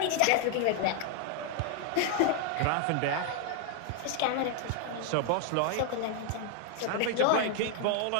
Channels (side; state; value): both; different; correlation 0.00